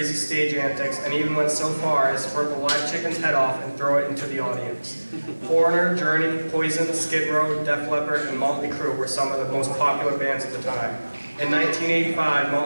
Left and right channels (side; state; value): both; inverted; correlation -1.00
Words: stage antics and even went so far as to rip a live chicken's head off and throw it into the audience. Foreigner, Journey, Poison, Skid Row, Def Leppard, and Motley Crue were some of the most popular bands at the time. In 1985,